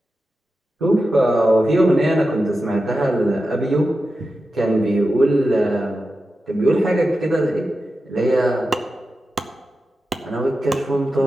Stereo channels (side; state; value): both; normal; correlation 0.91